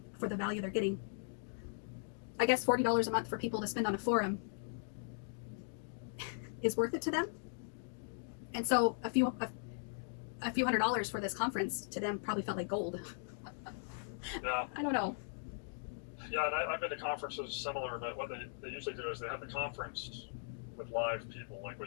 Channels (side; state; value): right; silent; digital silence